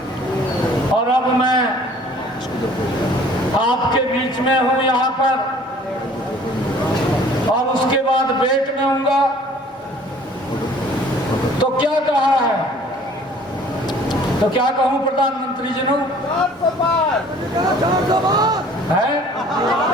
और अब मैं आपके बीच में हूं यहाँ पर और उसके बाद बेट में हूँगा। तो क्या कहा है? तो क्या कहूं प्रधानमंत्री जी ने?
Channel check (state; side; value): normal; both; correlation 0.53